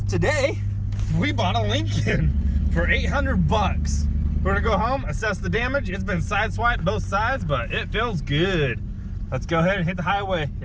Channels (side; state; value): both; identical; correlation 1.00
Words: Today, we bought a Lincoln for $800. We're gonna go home, assess the damage. It's been sideswiped both sides, but it feels good. Let's go ahead and hit the highway